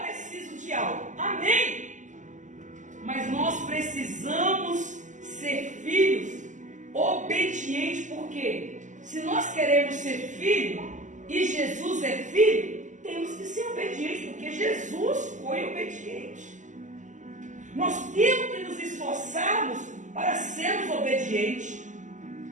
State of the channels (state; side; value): late; left; 0.36 ms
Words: preciso de algo. Amém? Mas nós precisamos ser filhos obedientes, porque se nós queremos ser filho e Jesus é filho, temos que ser obedientes, porque Jesus foi obediente. Nós temos que nos esforçarmos para sermos obedientes.